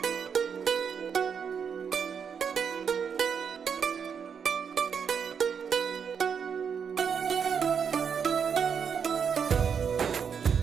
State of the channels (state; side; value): quieter; left; 6.9 dB